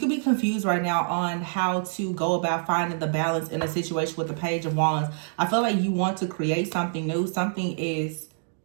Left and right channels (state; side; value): silent; left; digital silence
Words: be confused right now on how to go about finding the balance in a situation with the Page of Wands. I feel like you want to create something new. Something is